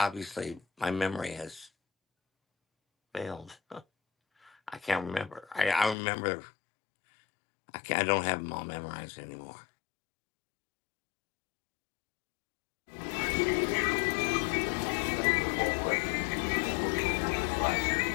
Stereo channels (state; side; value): drops out; right; at 6.0 s